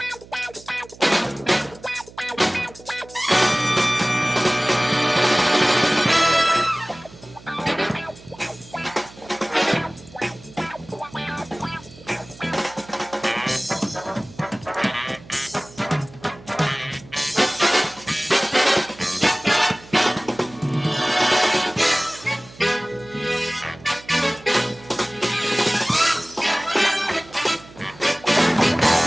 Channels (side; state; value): right; noise; hum, 21 dB below the sound